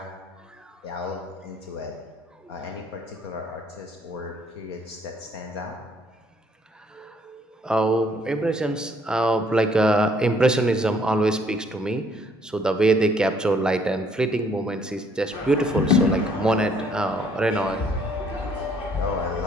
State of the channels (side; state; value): both; normal; correlation 0.64